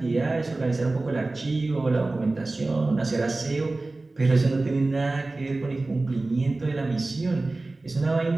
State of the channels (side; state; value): left; quieter; 3.1 dB